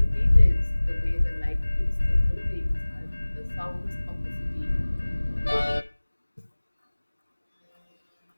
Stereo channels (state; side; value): inverted; both; correlation -1.00